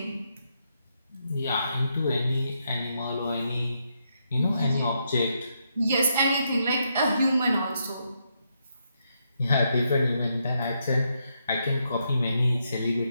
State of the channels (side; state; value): both; inverted; correlation -0.79